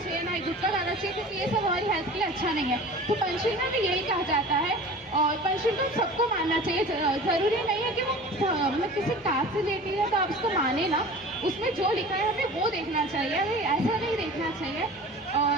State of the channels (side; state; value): both; normal; correlation 0.40